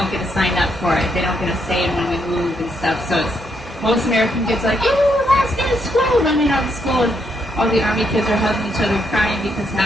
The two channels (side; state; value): both; normal; correlation 0.76